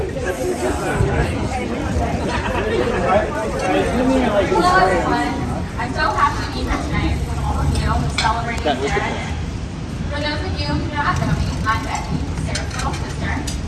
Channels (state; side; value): identical; both; correlation 1.00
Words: everyone. I'm so happy to be here tonight with all of you celebrating Sarah Day. For those of you who do not know me, I'm Becky, Sarah's little sister.